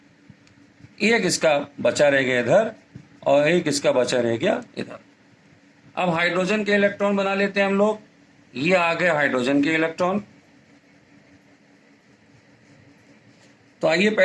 1 इसका बचा रह गया इधर और 1 इसका बचा रह गया इधर। अब हाइड्रोजन के इलेक्ट्रॉन बना लेते हैं हम लोग। ये आ गए हाइड्रोजन के इलेक्ट्रॉन। तो आइए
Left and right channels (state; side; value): identical; both; correlation 1.00